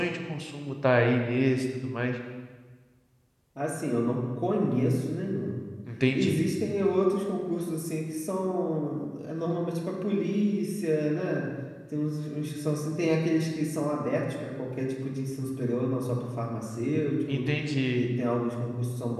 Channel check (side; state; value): both; identical; correlation 1.00